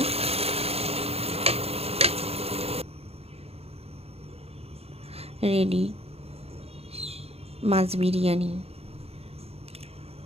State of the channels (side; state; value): left; late; 0.29 ms